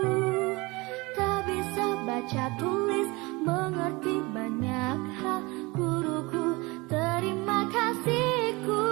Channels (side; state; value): left; quieter; 24.6 dB